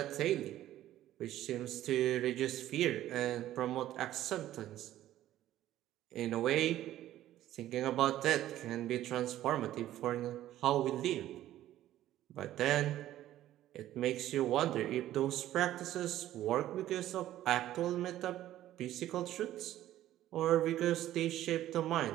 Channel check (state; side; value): quieter; left; 13.4 dB